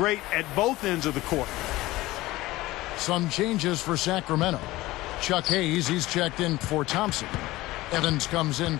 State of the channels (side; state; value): right; quieter; 18.4 dB